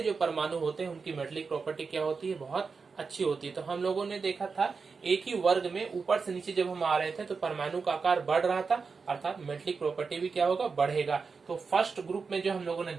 परमाणु होते हैं उनकी मेटेलिक प्रॉपर्टी क्या होती है, बहुत अच्छी होती है। तो हम लोगों ने देखा था एक ही वर्ग में ऊपर से नीचे जब हम आ रहे थे तो परमाणु का आकार बढ़ रहा था, अर्थात मेटेलिक प्रॉपर्टी भी क्या होगा, बढ़ेगा। तो फर्स्ट ग्रुप में जो हम लोगों ने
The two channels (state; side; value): quieter; left; 5.0 dB